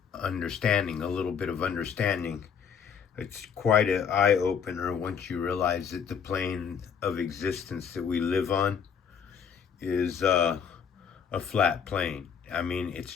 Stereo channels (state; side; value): quieter; right; 7.2 dB